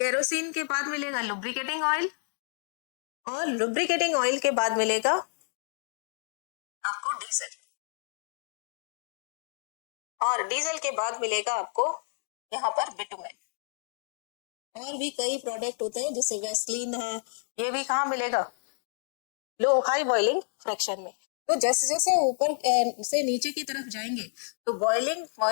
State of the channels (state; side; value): silent; right; digital silence